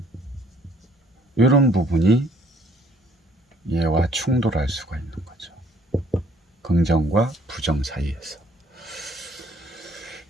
이런 부분이 얘와 충돌할 수가 있는 거죠. 긍정과 부정 사이에서.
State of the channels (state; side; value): normal; both; correlation 0.61